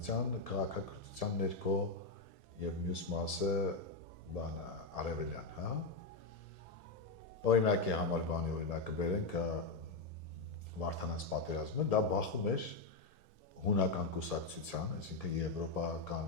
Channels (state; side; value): quieter; right; 3.6 dB